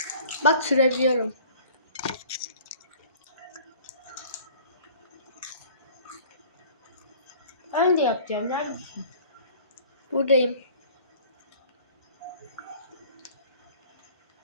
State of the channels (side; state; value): both; inverted; correlation -0.49